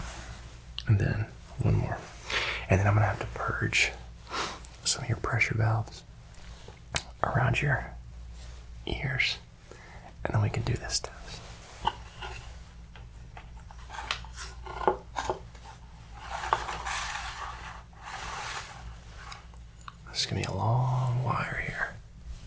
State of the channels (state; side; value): identical; both; correlation 1.00